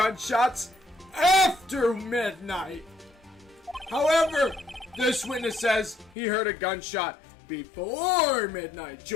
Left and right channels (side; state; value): right; drops out; at 6.2 s